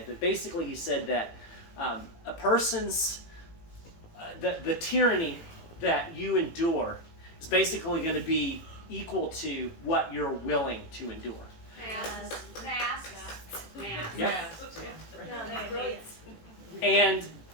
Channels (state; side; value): late; right; 18 ms